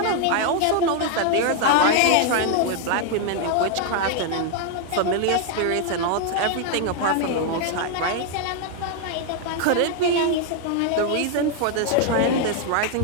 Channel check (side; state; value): both; different; correlation 0.00